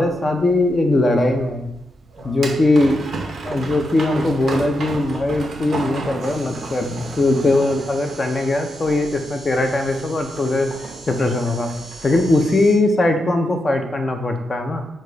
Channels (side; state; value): both; normal; correlation 0.86